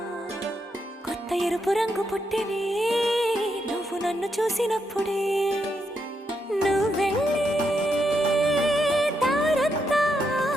కొత్త ఎరుపు రంగు పుట్టినే నువ్వు నన్ను చూసినప్పుడే నువ్వెళ్ళే దారంతా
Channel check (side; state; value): both; normal; correlation 0.81